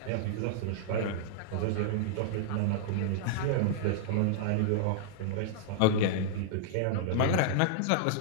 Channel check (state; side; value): different; both; correlation -0.02